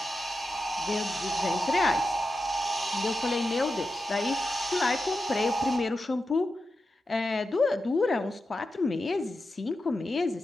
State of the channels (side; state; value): both; normal; correlation 0.90